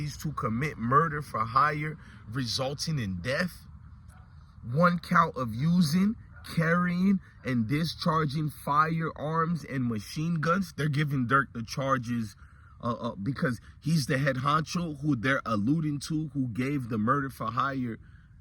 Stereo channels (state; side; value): identical; both; correlation 1.00